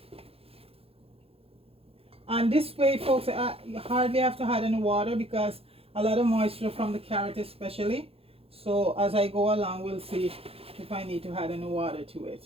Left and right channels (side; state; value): left; late; 0.28 ms